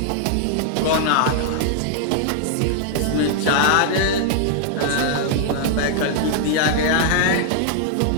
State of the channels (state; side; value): different; both; correlation -0.01